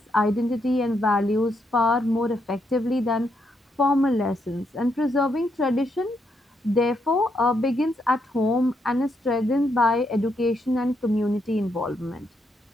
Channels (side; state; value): both; normal; correlation 0.78